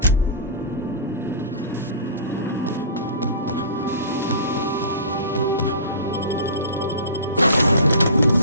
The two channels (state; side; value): inverted; both; correlation -0.37